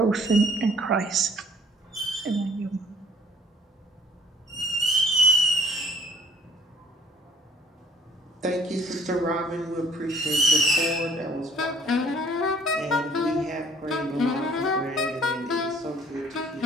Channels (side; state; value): both; normal; correlation 0.56